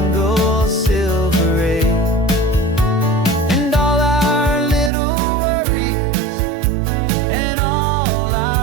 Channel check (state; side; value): drops out; left; at 4.9 s